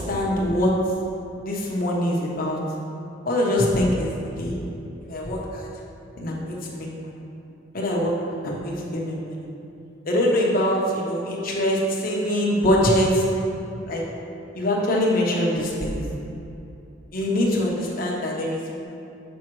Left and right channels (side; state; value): both; normal; correlation 0.48